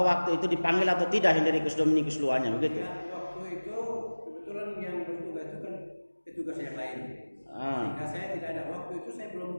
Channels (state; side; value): inverted; both; correlation -1.00